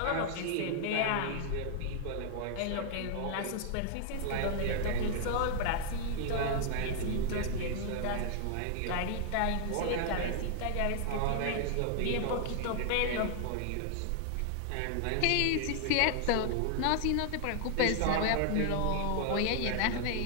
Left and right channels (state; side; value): different; both; correlation 0.00